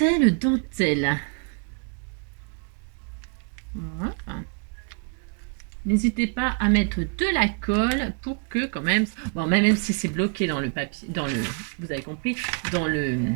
Voilà. N'hésitez pas à mettre de la colle pour que quand même, bon, même si c'est bloqué dans le papier, vous avez compris, dans le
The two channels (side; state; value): left; quieter; 38.6 dB